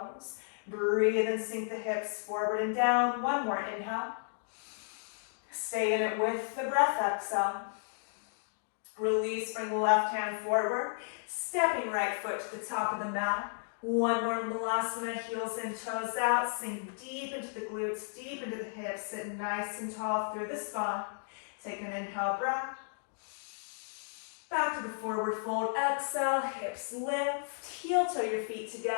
Breathe and sink the hips forward and down. 1 more inhale. Stay in it with the breath, exhale. Release, bring the left hand forward. Stepping right foot to the top of the mat. 1 more Malasana, heels in, toes out. Sink deep into the glutes, deep into the hips. Sit nice and tall through the spine. Take an inhale breath. Back to the forward fold, exhale, hips lift. Heel toe your feet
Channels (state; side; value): silent; right; digital silence